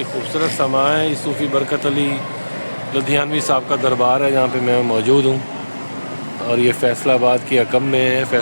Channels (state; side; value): inverted; both; correlation -1.00